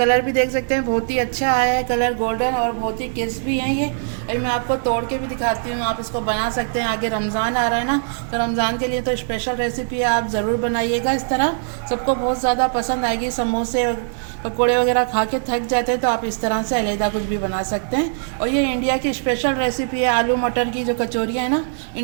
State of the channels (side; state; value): left; silent; digital silence